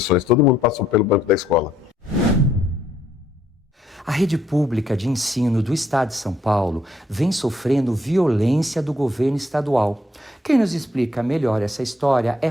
Todo mundo passou pelo banco da escola. A rede pública de ensino do Estado de São Paulo vem sofrendo violência do governo estadual. Quem nos explica melhor essa história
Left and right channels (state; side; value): normal; both; correlation 0.71